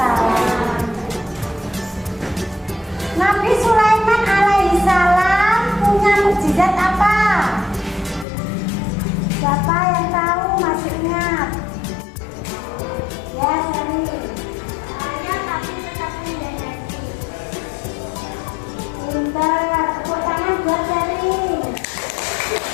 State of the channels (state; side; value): drops out; right; at 8.2 s